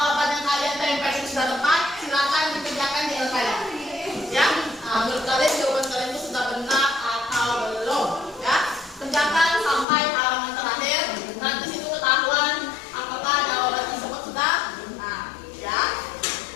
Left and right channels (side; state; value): right; drops out; at 9.9 s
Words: yang kalian tempel itu sudah tepat. Silakan dikerjakan di LKM. Ya, menurut kalian jawaban kalian itu sudah benar atau belum? Ya, kerjakan sampai halaman terakhir. Nanti situ ketahuan apakah jawaban tersebut sudah benar. Ya.